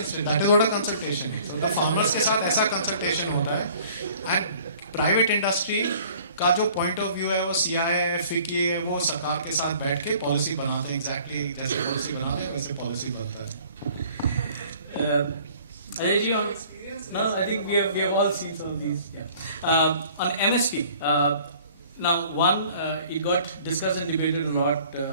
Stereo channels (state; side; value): inverted; both; correlation -0.53